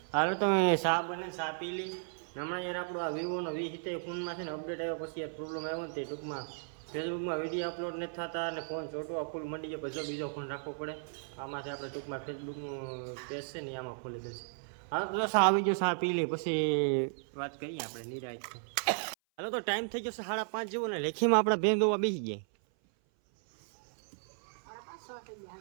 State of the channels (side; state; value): left; silent; 55 dB below the other